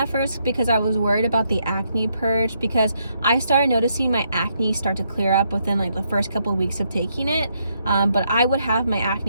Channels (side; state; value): both; inverted; correlation -0.76